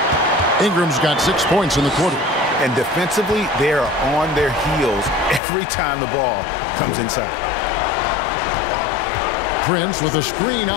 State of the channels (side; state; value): right; drops out; at 5.4 s